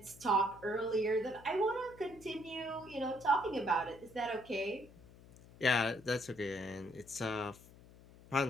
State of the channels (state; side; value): noise; left; hum, 21 dB below the sound